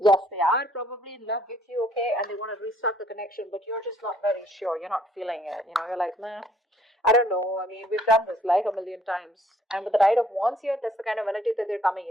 they are probably in love with you, okay? And they want to restart the connection, but you're just not very sure. You're not feeling it. You're like, nah. I don't know. I mean, we've done this like a million times. And with the Knight of Wands here, that's the kind of energy that they're coming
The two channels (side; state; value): both; normal; correlation 0.63